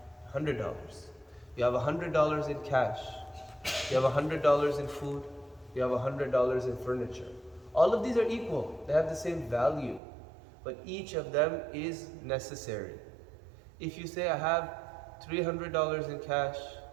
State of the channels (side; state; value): left; drops out; at 10.0 s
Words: $100. You have $100 in cash. You have $100 in food. You have $100 in furniture. All of these are equal. They have the same value, but each of them is necessary. If you say, I have $300 in cash,